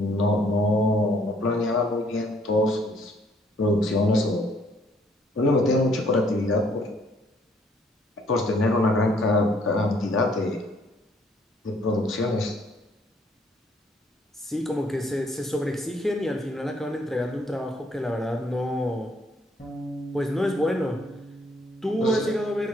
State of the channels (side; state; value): both; normal; correlation 0.65